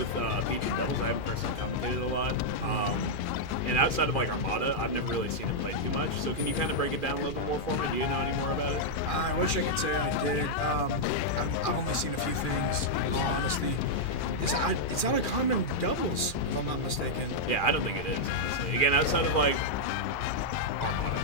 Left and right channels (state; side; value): late; right; 2.4 ms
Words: Peach and Devils. I haven't personally commentated a lot. And outside of like Armada, I've never really seen him play too much. So can you kind of break it down a little bit more for me? Do you know any more about it? I wish I could say I did. I've only seen a few things, in all honesty. It's not a common doubles, if I'm not mistaken. Yeah, I don't think it is, honestly. Again, outside of like Armada